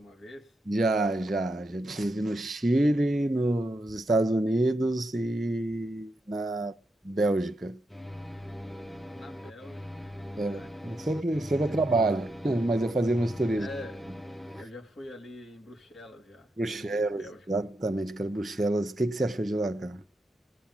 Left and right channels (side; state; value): both; normal; correlation 0.84